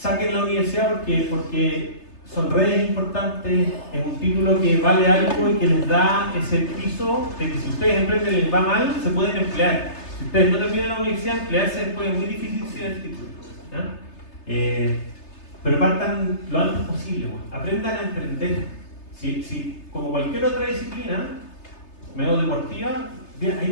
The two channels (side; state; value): right; late; 3.3 ms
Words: la universidad porque son redes importantes, es un título que vale algo y que les da ese piso de que si ustedes emprenden y les va mal, se pueden emplear. Si ustedes no terminan la universidad, emplearse después es muy difícil sin el título. Pero partan lo antes posible, aprendan a emprender. Si como cualquier otra disciplina, medio deportiva,